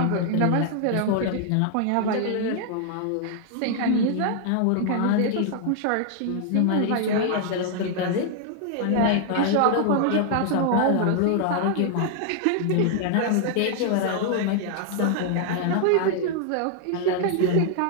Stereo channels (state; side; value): different; both; correlation 0.00